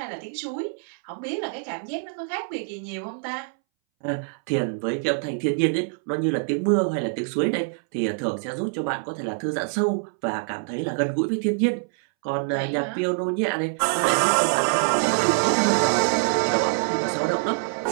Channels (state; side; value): silent; left; 62 dB below the other